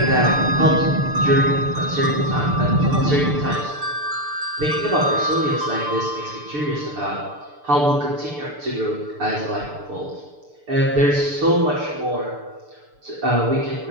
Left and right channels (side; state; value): left; late; 6.8 ms